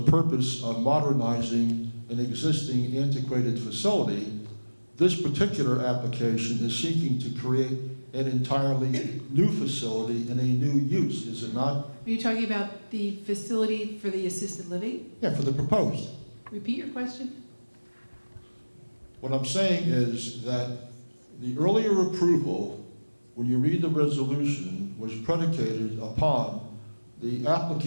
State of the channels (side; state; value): both; inverted; correlation -1.00